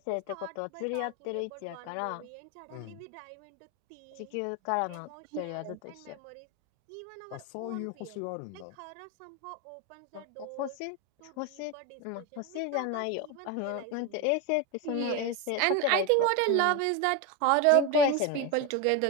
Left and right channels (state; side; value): different; both; correlation 0.03